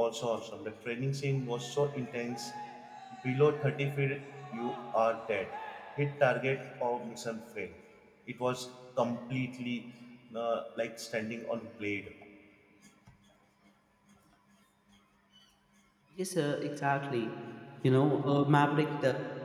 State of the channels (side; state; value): both; identical; correlation 1.00